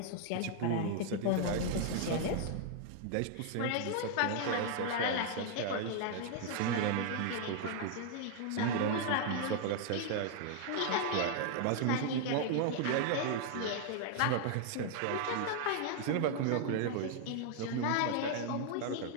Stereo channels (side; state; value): both; different; correlation 0.00